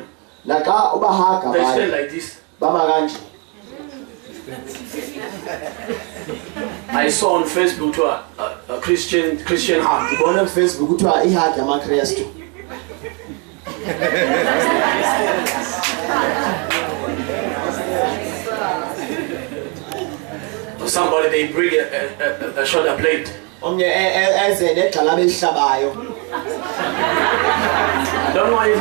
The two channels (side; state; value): left; quieter; 34.2 dB